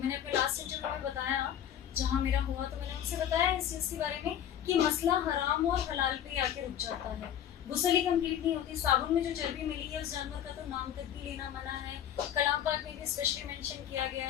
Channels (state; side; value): quieter; right; 10.2 dB